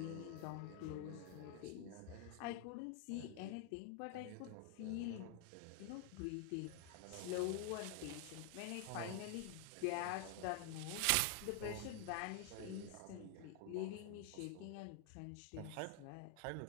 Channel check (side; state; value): both; different; correlation 0.00